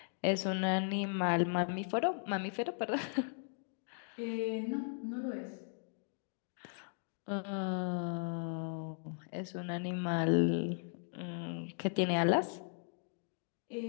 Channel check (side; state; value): right; silent; 53 dB below the other